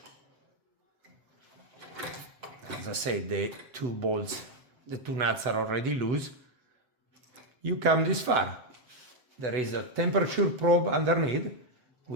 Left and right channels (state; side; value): late; left; 8.0 ms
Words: As I said, the two bolts, the two nuts are already loose. You come this far. There is a temperature probe underneath,